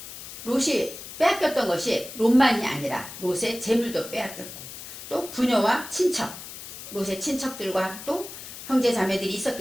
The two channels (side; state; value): left; noise; hiss, 12 dB below the sound